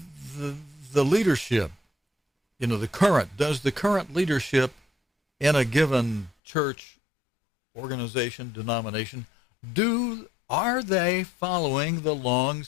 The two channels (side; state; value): right; drops out; at 6.3 s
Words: the leadership, does the current leadership in a given church, organization, denomination, are they following the